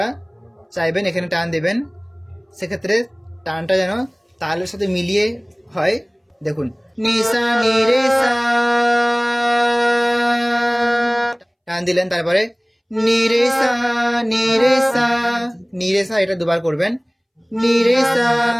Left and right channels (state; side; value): identical; both; correlation 1.00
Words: চাইবেন এখানে টান দেবেন, সেক্ষেত্রে টানটা যেন তালের সাথে মিলিয়ে হয়। দেখুন, নি সা নি রে সা, টান দিলেন। তারপরে নি রে সা নি রে সা, নি রে সা, এটা দুবার করবেন। নি রে সা